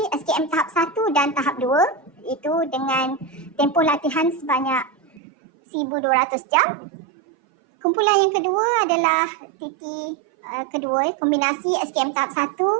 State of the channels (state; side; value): drops out; left; at 5.2 s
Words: SKM tahap 1 dan tahap 2 itu dengan tempoh latihan sebanyak 1,200 jam. Kumpulan yang kedua adalah TT kedua kombinasi SKM tahap 1,